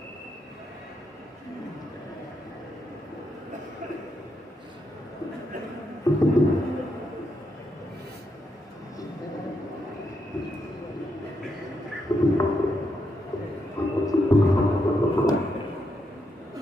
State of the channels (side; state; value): both; normal; correlation 0.80